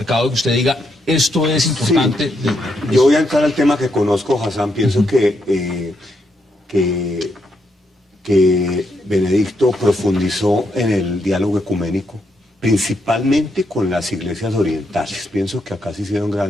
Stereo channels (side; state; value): both; normal; correlation 0.79